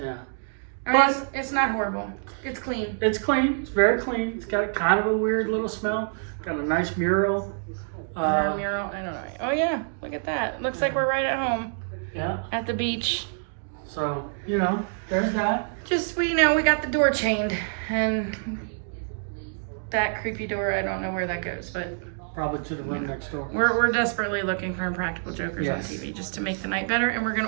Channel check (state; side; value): silent; left; digital silence